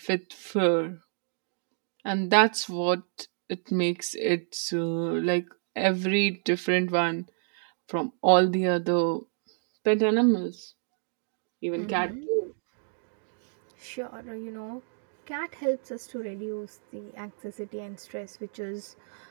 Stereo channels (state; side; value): silent; left; digital silence